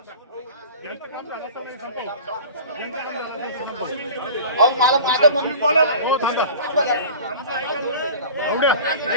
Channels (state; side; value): inverted; both; correlation -0.39